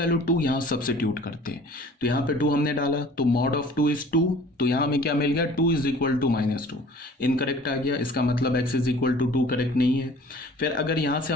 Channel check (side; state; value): both; normal; correlation 0.49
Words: 2 यहाँ सब्सिट्यूट करते हैं, तो यहाँ पे 2 हमने डाला, तो मॉड ऑफ 2 इज 2, तो यहाँ हमें क्या मिल गया, 2 इज इक्वल टू -2। इनकरेक्ट आ गया, इसका मतलब x is equal to 2 correct नहीं है। फिर अगर यहाँ से